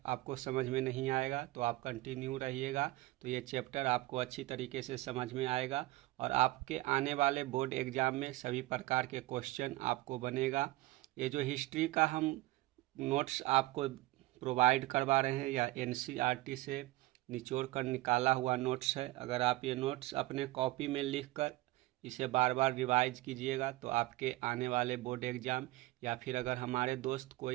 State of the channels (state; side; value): quieter; left; 18.7 dB